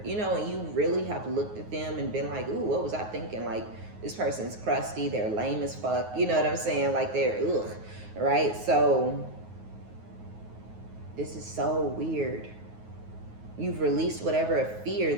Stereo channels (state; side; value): late; left; 9.4 ms